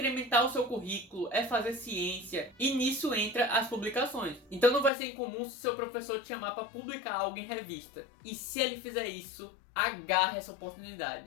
o seu currículo, é fazer ciência e nisso entra as publicações. Então não vai ser incomum se o seu professor te chamar para publicar algo em revista. E se ele fizer isso, agarre essa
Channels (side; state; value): right; drops out; at 4.9 s